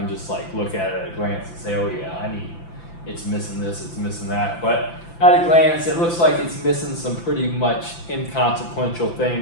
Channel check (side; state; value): right; late; 5.9 ms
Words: just like look at it at a glance and say, oh yeah, it's missing this, it's missing that. But at a glance, it looks like it's missing some pretty much inconsequential